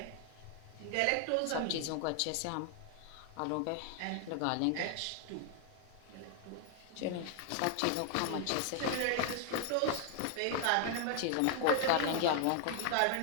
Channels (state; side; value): different; both; correlation 0.00